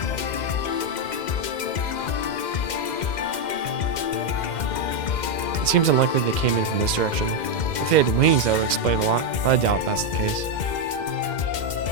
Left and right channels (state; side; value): late; right; 2.1 ms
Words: It seems unlikely they came in from this direction. If they had wings, that would explain a lot, but I doubt that's the case.